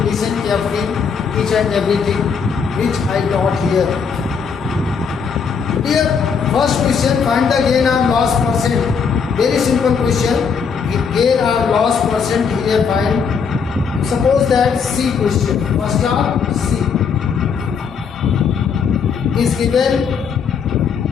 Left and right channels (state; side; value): quieter; right; 6.1 dB